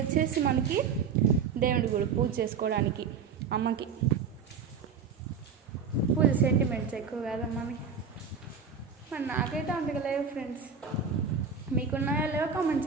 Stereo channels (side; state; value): left; quieter; 6.2 dB